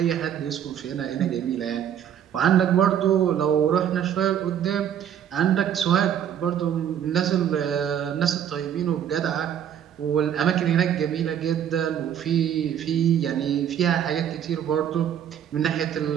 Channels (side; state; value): left; quieter; 9.4 dB